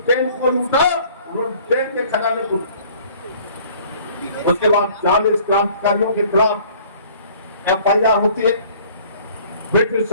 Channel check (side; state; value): both; inverted; correlation -0.53